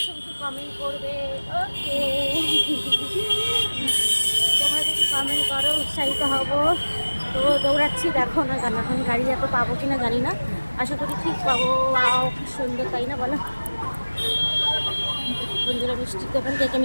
করবে। ওকে, তোমরা যদি কমেন্ট করো উৎসাহিত হব। তো দৌড়াচ্ছি, দেখো না কেন, এখন গাড়ি এত পাবো কিনা জানি না, আশা করি ঠিক পাবো। খুব সুন্দর, তাই না বলো বন্ধুরা? মিষ্টির দোকান, কে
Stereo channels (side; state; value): both; inverted; correlation -1.00